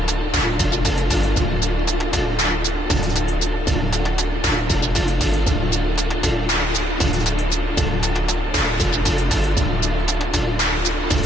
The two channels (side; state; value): both; normal; correlation 0.74